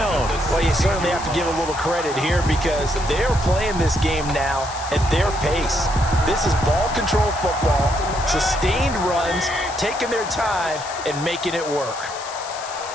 Well, you certainly have to give a little credit here because they're playing this game now at their pace. This is ball control football, sustained runs, taking their time and making it work.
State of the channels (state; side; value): noise; left; hiss, 12 dB below the sound